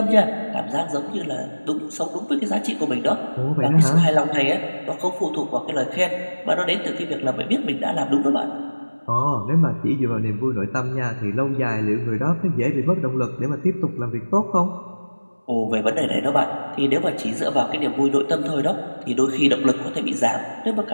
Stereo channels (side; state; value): both; inverted; correlation -1.00